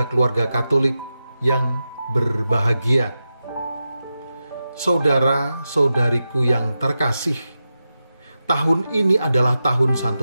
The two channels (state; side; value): inverted; both; correlation -0.91